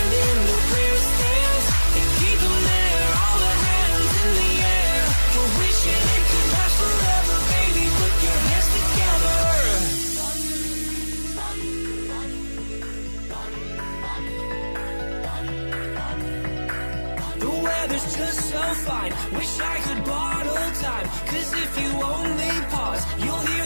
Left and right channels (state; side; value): inverted; both; correlation -1.00